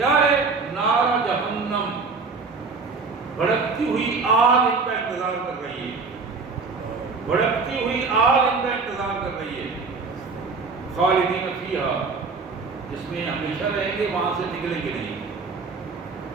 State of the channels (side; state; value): left; quieter; 4.5 dB